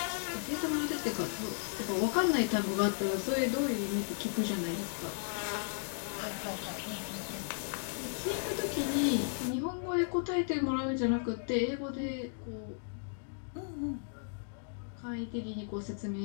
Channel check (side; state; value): right; silent; digital silence